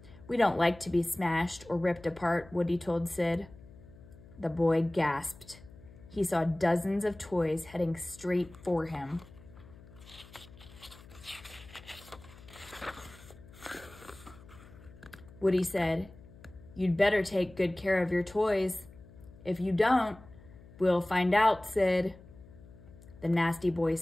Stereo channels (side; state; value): left; noise; hum, 21 dB below the sound